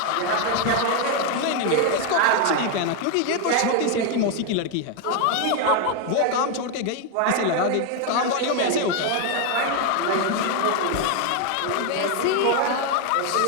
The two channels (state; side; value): different; both; correlation 0.01